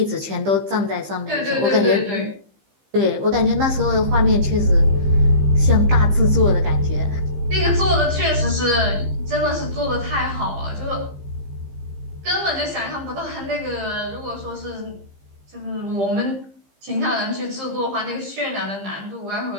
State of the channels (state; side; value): late; left; 15 ms